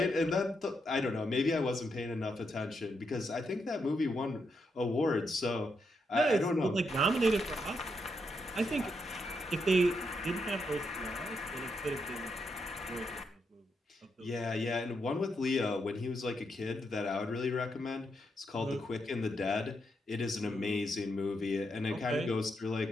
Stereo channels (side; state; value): both; normal; correlation 0.81